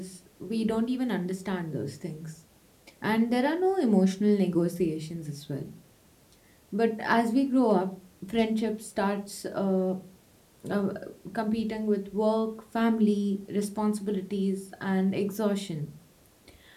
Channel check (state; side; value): identical; both; correlation 1.00